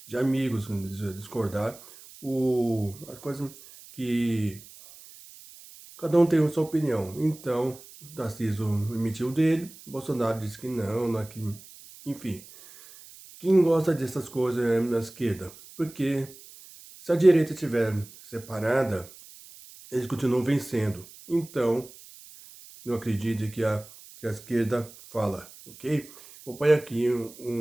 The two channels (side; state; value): right; noise; hiss, 20 dB below the sound